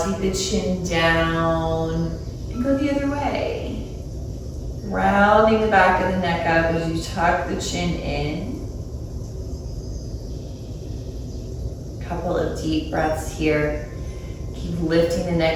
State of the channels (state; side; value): identical; both; correlation 1.00